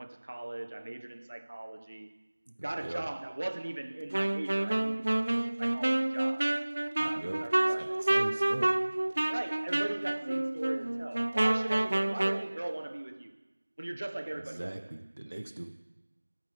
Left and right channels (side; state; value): both; inverted; correlation -1.00